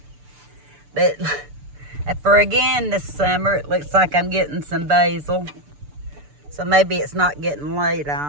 But for again this summer, it looks like I'm getting some basil. So maybe it's not getting laid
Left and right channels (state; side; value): late; left; 6.9 ms